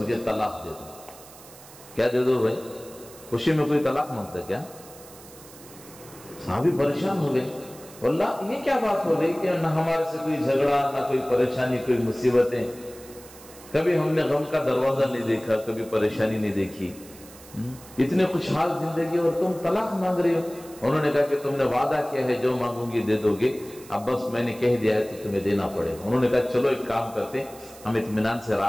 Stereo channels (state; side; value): noise; right; hiss, 20 dB below the sound